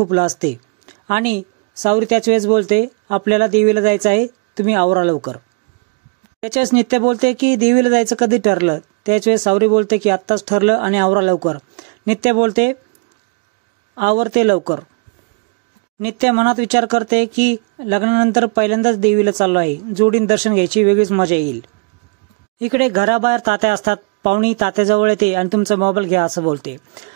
लाजते आणि सावरी त्याच वेळेस बोलते आपल्याला देवीला जायचं आहे, तुम्ही आवरा लवकर। त्याच्यास नित्या बोलते की देवीला जायचं कधी ठरलं। त्याच वेळेस सावरी बोलते की आत्ताच ठरलं आणि आवरा लवकर। नित्या बोलते आवरते लवकर। नित्या मनात विचार करते की लग्नानंतर पहिल्यांदाच देवीला चाललो आहे, जोडीन दर्शन घ्यायची वेगळीच मजा येईल। इकडे घराबाहेर तात्या असतात। पाहुणी तात्याजवळ येते आणि तुमचा मोबाईल घ्या असं बोलते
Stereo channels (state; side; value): quieter; left; 31.2 dB